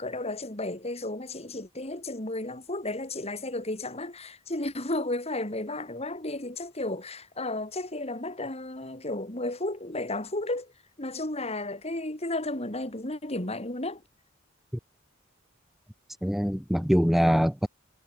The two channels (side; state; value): both; normal; correlation 0.67